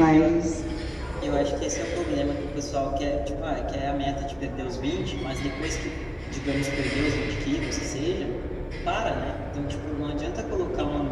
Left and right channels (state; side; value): identical; both; correlation 1.00